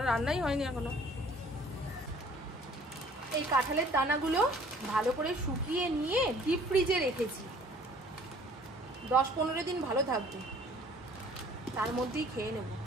রান্নাই হয়নি এখনো। এই কাঁঠালের দানাগুলো ভালো করে শুকিয়ে নিয়ে ডিপ ফ্রিজে রেখেছি, 10-15 দিন ভালো থাকবে, তার মধ্যেই খেয়ে নেব।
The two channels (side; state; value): both; normal; correlation 0.54